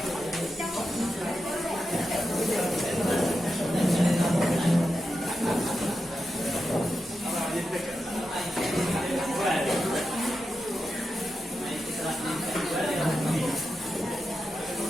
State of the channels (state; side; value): normal; both; correlation 0.89